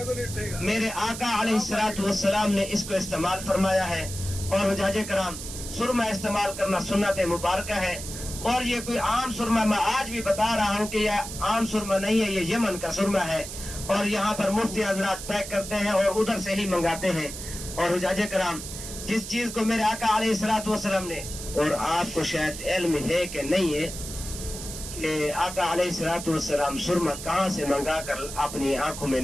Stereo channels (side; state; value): right; noise; hiss, 9 dB below the sound